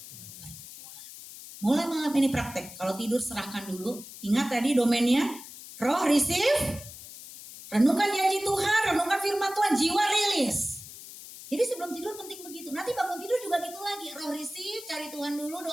pergumulan. Mulai malam ini praktek. Kalau tidur serahkan dulu. Ingat tadi domainnya. Roh receive. Renungkan janji Tuhan. Renungkan firman Tuhan. Jiwa rilis. Jadi sebelum tidur penting begitu. Nanti bangun tidur juga gitu lagi. Roh receive. Cari Tuhan dulu.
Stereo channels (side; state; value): left; noise; hiss, 14 dB below the sound